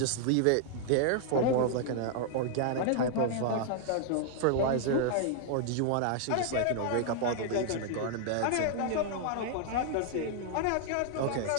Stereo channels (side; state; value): both; different; correlation 0.00